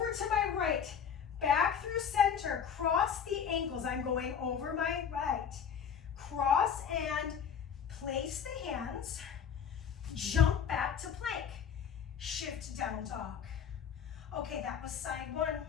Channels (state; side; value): quieter; right; 7.5 dB